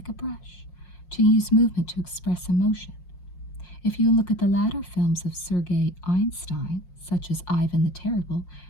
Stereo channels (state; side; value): late; right; 5.6 ms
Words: a brush, to use movement to express emotion. If you look at the latter films of Sergei Einstein, such as Ivan the Terrible,